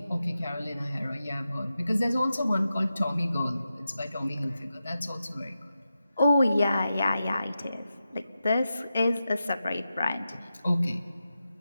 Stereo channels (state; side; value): inverted; both; correlation -0.91